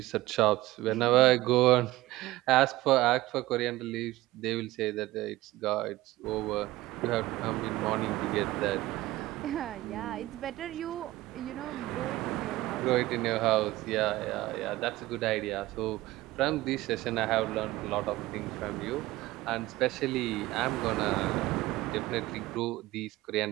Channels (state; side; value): quieter; left; 17.7 dB